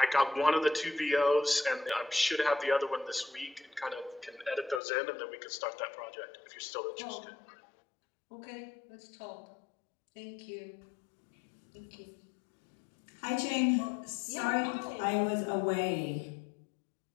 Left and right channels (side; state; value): right; drops out; at 4.8 s